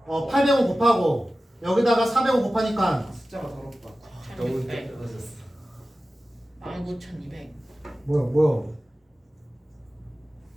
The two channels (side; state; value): both; normal; correlation 0.95